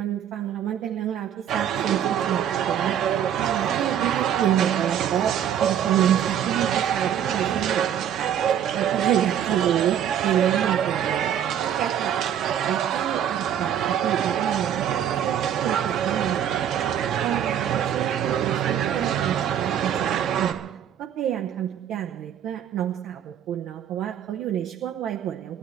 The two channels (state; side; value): quieter; left; 9.6 dB